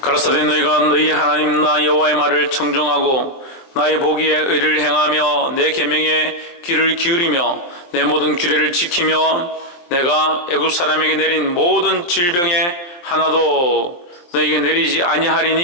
가라사대 너희가 너희 하나님 나 여호와의 말을 청종하고 나의 보기에 의를 행하며 내 계명에 귀를 기울이며 내 모든 규례를 지키며 내가 애굽 사람에게 내린 모든 질병에 하나도 너희에게 내리지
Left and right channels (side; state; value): right; late; 23 ms